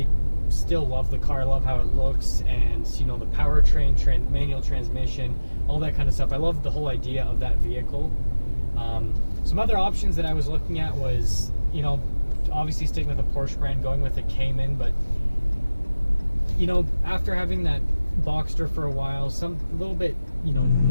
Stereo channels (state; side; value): inverted; both; correlation -0.99